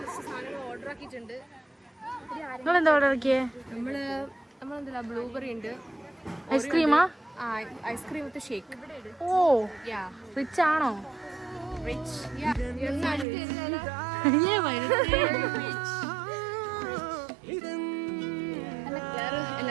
സാധനങ്ങൾ ഓർഡർ ആക്കിയിട്ടുണ്ട്. നിങ്ങളെന്താ ഓർഡർ ആക്കിയേ? നമ്മളെന്താ ബ്ലൂബെറി ഉണ്ട്. ഐസ്ക്രീമാ? Ice cream with shake. Oh rich ആണോ? റിച്ച്.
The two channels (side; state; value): left; drops out; at 13.2 s